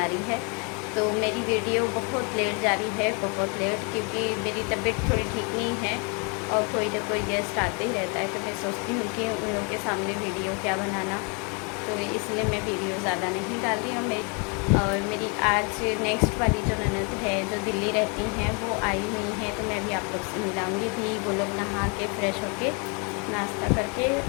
रही है। तो मेरी वीडियो बहुत लेट जा रही है, बहुत लेट, क्योंकि मेरी तबीयत थोड़ी ठीक नहीं है और कोई ना कोई गेस्ट आते ही रहता है। तो मैं सोचती हूँ कि उन लोगों के सामने वीडियो क्या बनाना, तो इसलिए मैं वीडियो ज़्यादा नहीं डाल रही हूँ। और मेरी आज नेक्स्ट वाली जो ननद है, जो दिल्ली रहती हैं, वो आई हुई हैं। तो मैं भी आप लोग से मिलाऊंगी भी। वो लोग नहा के फ्रेश होके नाश्ता करके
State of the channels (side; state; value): right; quieter; 34.4 dB